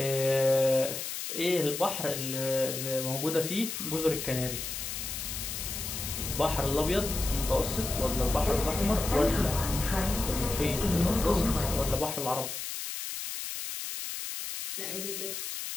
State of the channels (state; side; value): noise; left; hiss, 5 dB below the sound